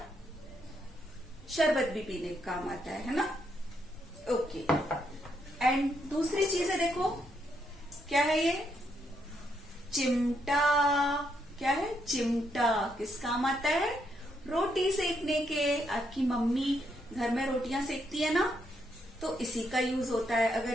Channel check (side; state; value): both; normal; correlation 0.77